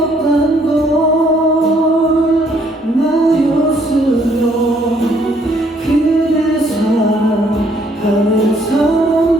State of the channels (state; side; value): normal; both; correlation 0.66